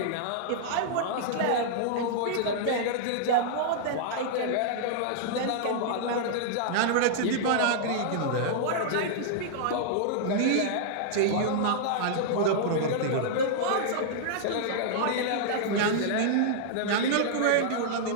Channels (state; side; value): different; both; correlation -0.01